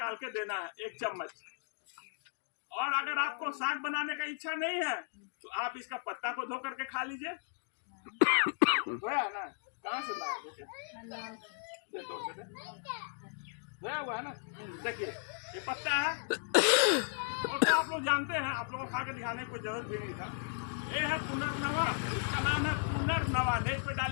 के देना है 1 चम्मच। और अगर आपको साग बनाने का इच्छा नहीं है तो आप इसका पत्ता को धो करके खा लीजिए। धोया ना, कहाँ से लाए, धोया हुआ है ना, देखिए ये पत्ता है। और तो आप लोग जानते हैं, आप लोगों को खा के दिखाने की कोई जरूरत भी नहीं था। ये है पुनर्नवा, इसका नाम है पुनर्नवा। नेट पे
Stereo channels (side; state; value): right; silent; digital silence